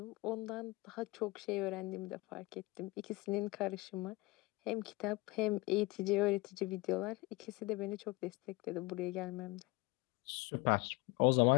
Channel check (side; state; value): right; quieter; 22.7 dB